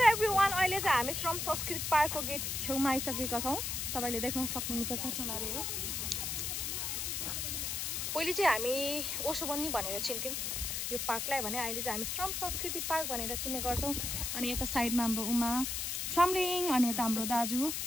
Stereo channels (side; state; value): left; noise; hiss, 2 dB below the sound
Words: एभ्रीवान अहिले चाहिँ हामी श्रम संस्कृति पार्कको गेट छेउमा आइसकेका छौँ तपाईँले देख्न सक्नुहुन्छ चट्टलाले हो पहिले चाहिँ हामी ओसोबन्नी भनेर चिन्थ्यौँ यो पार्कलाई भने अहिले चाहिँ हामी श्रम संस्कृति पार्क भनेर चिन्ने गर्छौँ अनि यता साइडमा हाम्रो उमा छम्लिङ अनि यता हाम्रो दाजु